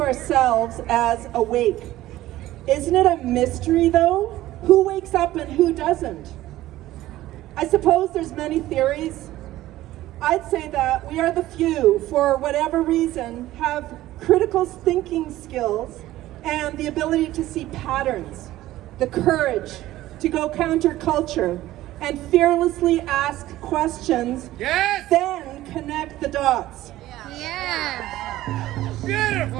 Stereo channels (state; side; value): quieter; left; 15.4 dB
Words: ourselves as awake. Isn't it a mystery, though? Who wakes up and who doesn't? I suppose there's many theories. I'd say that we are the few, for whatever reason, have critical thinking skills and the ability to see patterns, the courage to go counterculture and fearlessly ask questions, Yes! then connect the dots. Yeah.